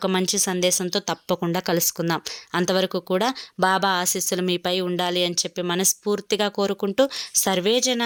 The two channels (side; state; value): both; identical; correlation 1.00